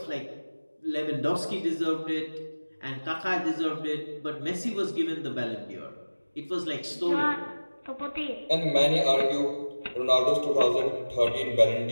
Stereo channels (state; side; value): inverted; both; correlation -1.00